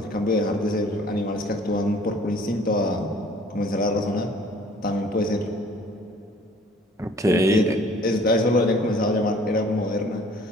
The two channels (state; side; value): normal; both; correlation 0.53